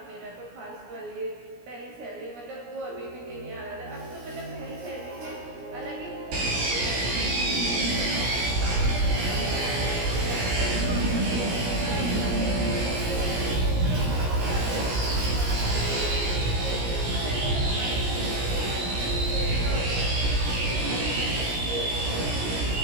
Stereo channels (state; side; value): late; left; 17 ms